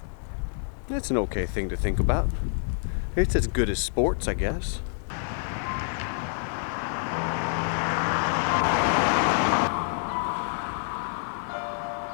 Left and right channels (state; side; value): silent; right; digital silence